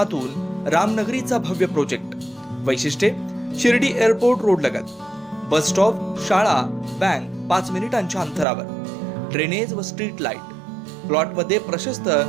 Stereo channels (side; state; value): left; drops out; at 8.5 s